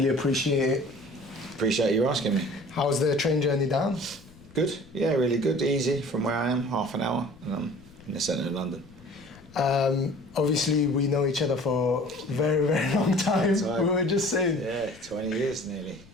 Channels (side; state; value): left; noise; rumble, 23 dB below the sound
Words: appreciate it. Appreciate you asking me. How's the train journey down? Good, yeah, really good. Easy from where I am, half an hour, and I'm in the centre of London. Obviously, we know each other for a very, very long time. We were just saying. Yeah, 20 years nearly.